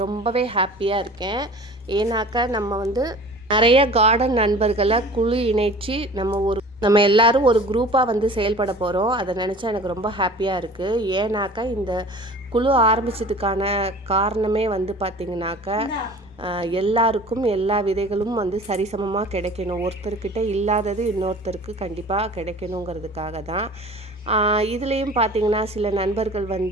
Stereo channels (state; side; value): normal; both; correlation 0.43